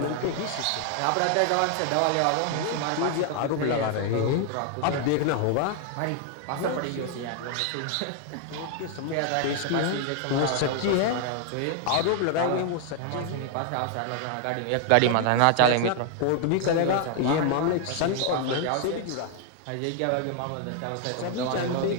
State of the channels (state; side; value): different; both; correlation 0.00